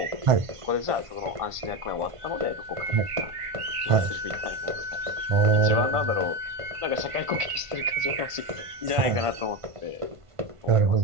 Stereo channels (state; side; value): late; left; 1.5 ms